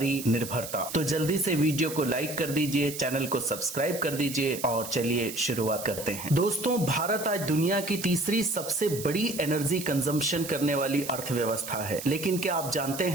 निर्भरता। तो जल्दी से वीडियो को लाइक कर दीजिए, चैनल को सब्सक्राइब कर दीजिए और चलिए शुरुआत करते हैं। दोस्तों, भारत आज दुनिया की तीसरी सबसे बड़ी एनर्जी कंजम्पशन करने वाली अर्थव्यवस्था है, लेकिन क्या आप जानते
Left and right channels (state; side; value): noise; right; hiss, 10 dB below the sound